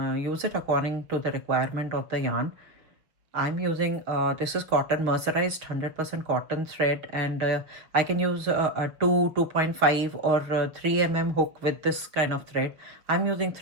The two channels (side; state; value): left; late; 6.1 ms